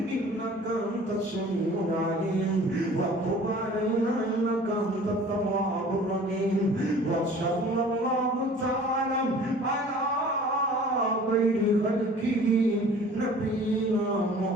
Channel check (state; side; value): normal; both; correlation 0.47